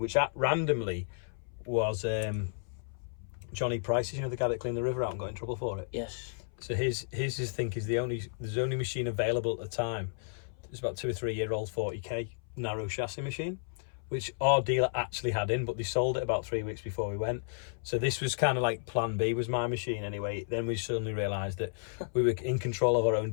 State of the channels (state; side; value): silent; right; 56 dB below the other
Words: randomly was Johnny Price's, you know, the guy that cleaned the river out and got in trouble for it. Yes. So his think is there's the only machine available at the time. It's about 2 or 3 year old 40k narrow chassis machine, which our dealer actually had in, but they sold it about 3 weeks before we went. So this was kind of like plan B was my machine anyway. Then we suddenly realised that we were in control of our own